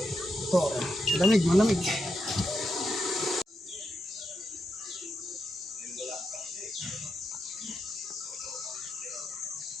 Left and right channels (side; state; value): both; normal; correlation 0.85